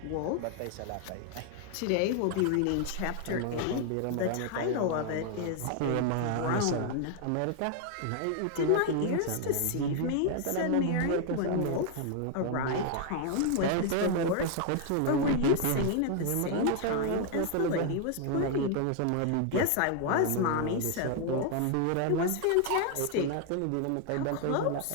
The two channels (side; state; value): both; different; correlation 0.00